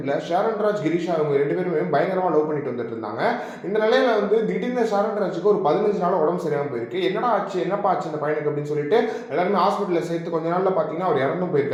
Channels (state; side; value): identical; both; correlation 1.00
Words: ஷாரன்ராஜ் கிரீஷா அவங்க ரெண்டு பேருமே பயங்கரமாக லவ் பண்ணிட்டு வந்துட்டு இருந்தாங்க. இந்த நிலையில திடீர்னு ஷாரன்ராஜுக்கு ஒரு 15 நாள் உடம்பு சரியாமல் போயிருக்கு. என்னடா ஆச்சு, என்னப்பா ஆச்சு இந்த பையனுக்கு அப்படின்னு சொல்லிட்டு எல்லாருமே ஹாஸ்பிட்டலில் சேர்த்து கொஞ்ச நாளில் பார்த்தீங்கன்னா அவர் இறந்தும்